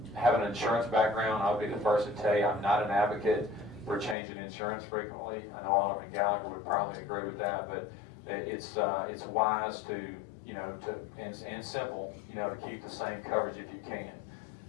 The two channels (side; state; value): right; drops out; at 4.2 s